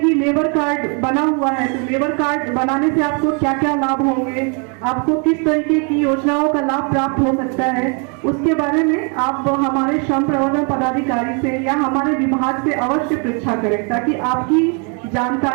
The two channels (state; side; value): quieter; left; 36.6 dB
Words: लेबर कार्ड बना हुआ है, तो लेबर कार्ड बनाने से आपको क्या क्या लाभ होंगे, आपको किस तरीके की योजनाओं का लाभ प्राप्त हो सकता है, उसके बारे में आप हमारे श्रम प्रवर्तन पदाधिकारी से या हमारे विभाग से अवश्य परीक्षा करें, ताकि आपकी